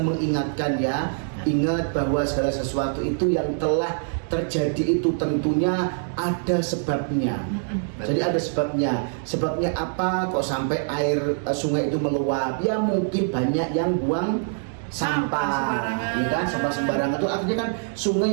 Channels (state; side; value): silent; left; digital silence